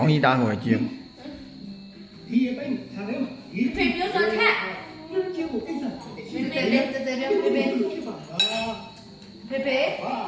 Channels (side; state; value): both; identical; correlation 1.00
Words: င်းကြီးသားကိုကြည့် ဒီအပိုင်းထားတယ်ဒီ ဖေပြောဆိုထက် ကျင်းကိုအိတ်ဆက် ဖေဖေလေးတည်းတည်းဖေဖေဖေဖေ